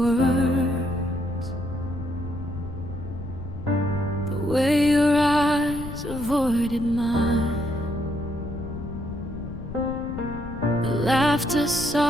words, the way your eyes avoided mine. The laughter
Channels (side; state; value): left; noise; rumble, 10 dB below the sound